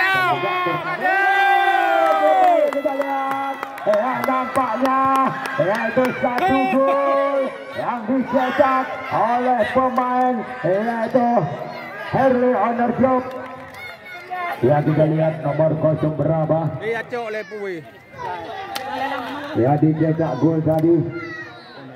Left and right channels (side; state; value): both; identical; correlation 1.00